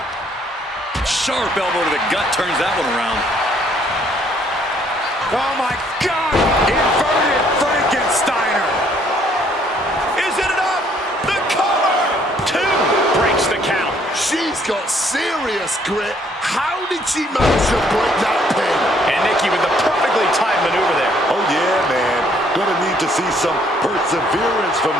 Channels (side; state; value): both; normal; correlation 0.65